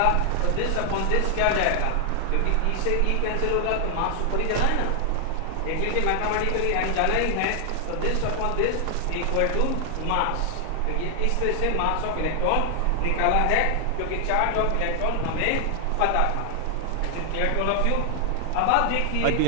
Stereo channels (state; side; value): different; both; correlation 0.00